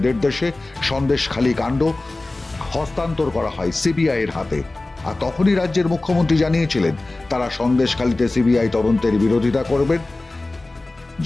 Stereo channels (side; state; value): right; quieter; 3.0 dB